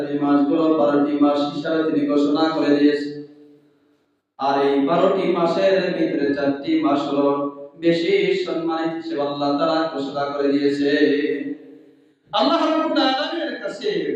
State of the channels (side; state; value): both; identical; correlation 1.00